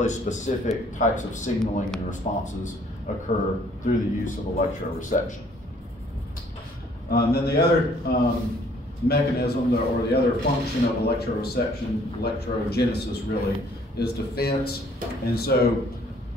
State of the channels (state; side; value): normal; both; correlation 0.60